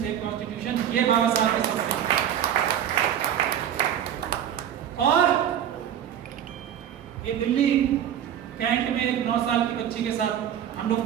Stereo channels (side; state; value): left; quieter; 9.9 dB